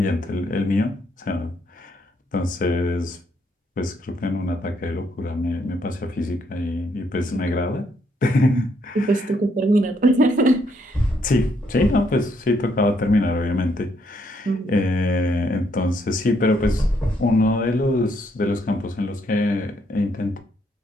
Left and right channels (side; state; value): both; normal; correlation 0.73